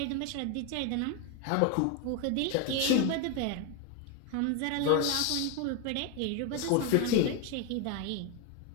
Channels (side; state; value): both; different; correlation 0.02